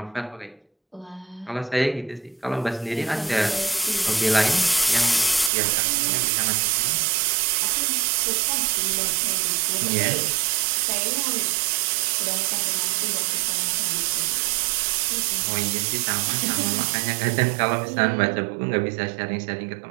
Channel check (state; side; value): drops out; left; at 5.5 s